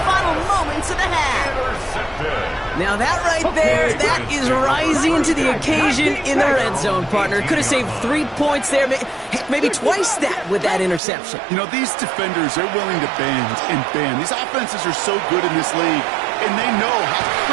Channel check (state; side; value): drops out; left; at 11.0 s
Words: final moments of the half. Now that right there, that is rising to the occasion in the red zone, partner. Could have saved 3 points there, maybe twice that with that interception. You know, these defenders, they're willing to bend and bend. These offenses are so good in this league, and they know how